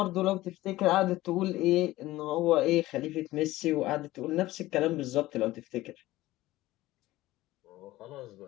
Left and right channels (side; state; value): right; quieter; 17.1 dB